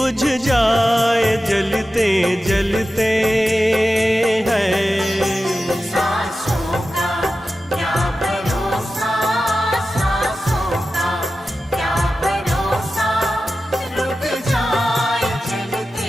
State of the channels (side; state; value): both; normal; correlation 0.93